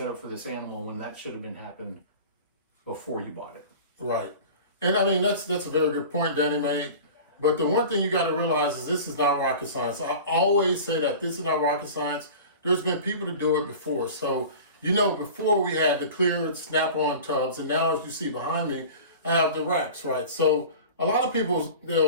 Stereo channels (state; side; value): inverted; both; correlation -0.38